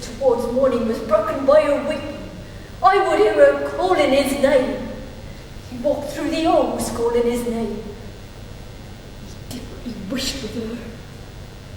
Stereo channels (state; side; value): identical; both; correlation 1.00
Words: towards morning was broken by her weeping. I would hear her calling his name. He walked through the halls calling his name. He did what he wished with her.